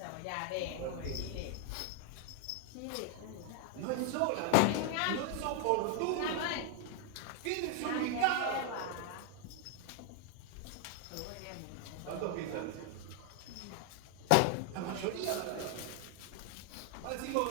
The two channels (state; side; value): different; both; correlation 0.00